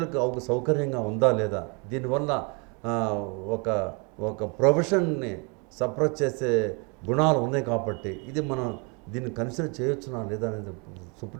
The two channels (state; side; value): quieter; left; 32.9 dB